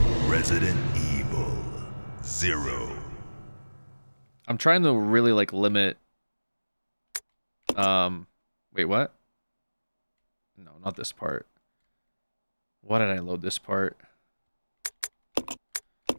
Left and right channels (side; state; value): both; inverted; correlation -1.00